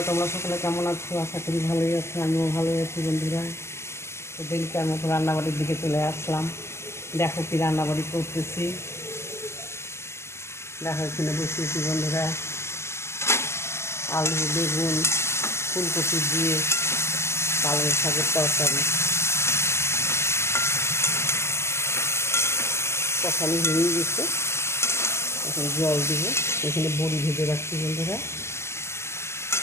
তোমরা সকলে কেমন আছো? আশা করি ভালোই আছো, আমিও ভালোই আছি বন্ধুরা। তো দিনকার মতো রান্নাবাড়ির দিকে চলে আসলাম। দেখো কি রান্নাবাড়ি করতেছি, দেখো এখানে বসিয়েছি বন্ধুরা। আলু, বেগুন, ফুলকপি দিয়ে পালং শাকের তরকারি। কষানি হয়ে গেছে, এখন জল দিব। এখানে বড়ি ভেজে রাখছি বন্ধুরা।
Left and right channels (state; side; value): late; right; 0.13 ms